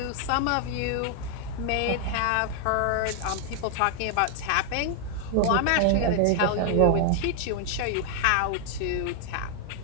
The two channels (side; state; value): both; different; correlation 0.00